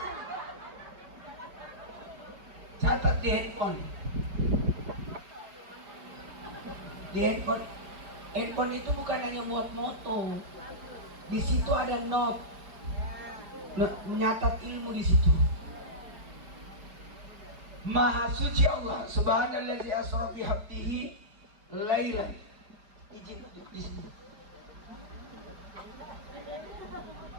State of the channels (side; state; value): left; late; 4.8 ms